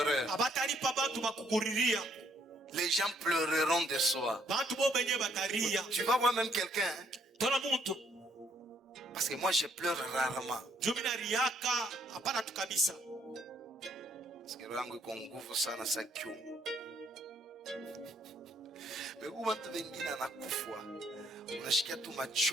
abatalipa bantu bakukuriria. Les gens pleureront de soi. Bantu bo benye bataria. Tu vas voir même quelqu'un, hein? Tona muntu. Parce que moi je pleure rarement. Jumina riaka hapana tu kabisa. Parce que rangu iko nguvu sana sa kiumu. Megu watu wengine anakufa. Unashikia tu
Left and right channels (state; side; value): normal; both; correlation 0.69